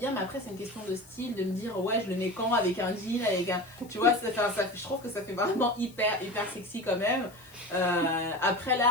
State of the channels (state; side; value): noise; left; hiss, 24 dB below the sound